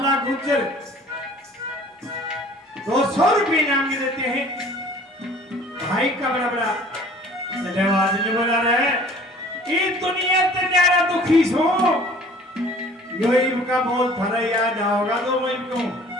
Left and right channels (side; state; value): both; normal; correlation 0.50